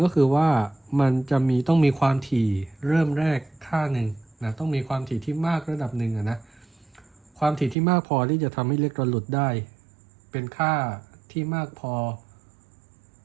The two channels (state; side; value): drops out; left; at 7.8 s